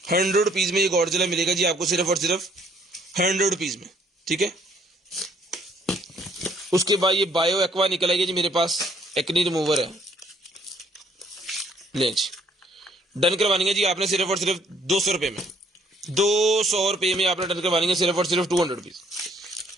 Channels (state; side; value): normal; both; correlation 0.65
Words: 100 रुपीज में ये गॉडजिला मिलेगा जी आपको सिर्फ और सिर्फ 100 रुपीज में, ठीक है। उसके बाद ये बायो एक्वा निकलेगी जी मेरे पास, एक्नी रिमूवर है, ले जी। डन करवानी है जी आपने सिर्फ और सिर्फ 200 रुपए में। 200 रुपए में आपने डन करवानी है सिर्फ और सिर्फ 200 रुपीज,